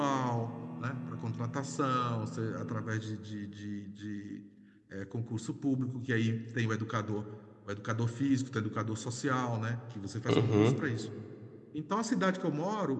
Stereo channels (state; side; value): identical; both; correlation 1.00